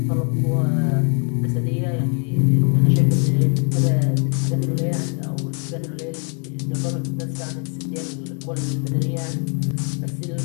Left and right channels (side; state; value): right; quieter; 37.9 dB